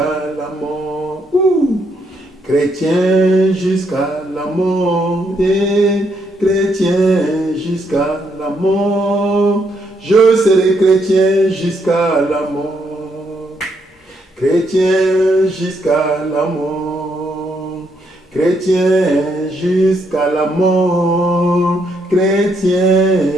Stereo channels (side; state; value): both; normal; correlation 0.75